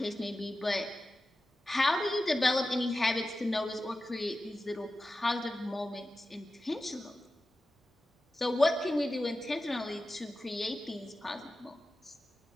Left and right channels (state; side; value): normal; both; correlation 0.93